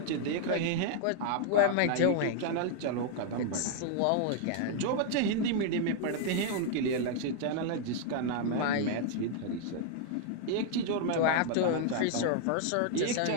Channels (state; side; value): different; both; correlation 0.00